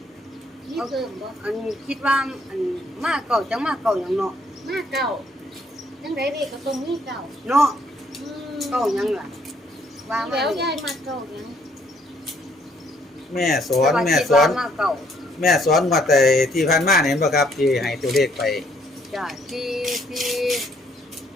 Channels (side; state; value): both; normal; correlation 0.67